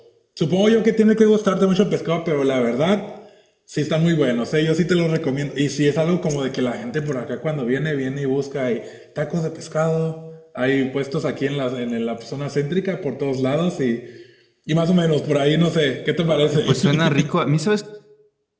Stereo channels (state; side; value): identical; both; correlation 1.00